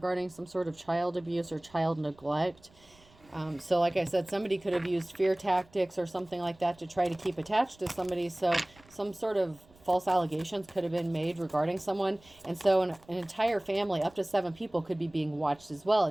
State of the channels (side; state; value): right; noise; rumble, 28 dB below the sound